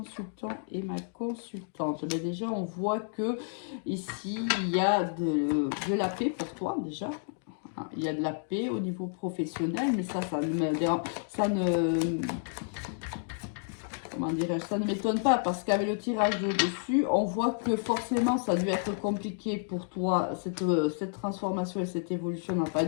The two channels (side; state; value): right; silent; digital silence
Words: et ma consultante. Mais déjà, on voit que ici, il y a de la paix pour toi, déjà. Il y a de la paix au niveau professionnel, mais ça ne... Comment dirais-je, ça ne m'étonne pas parce qu'avec le tirage de dessus, on voit que forcément ça a dû être compliqué pour toi. Cette transformation et cette évolution n'a pas